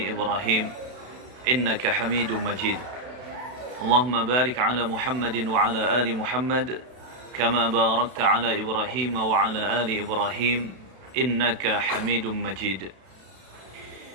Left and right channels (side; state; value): left; late; 32 ms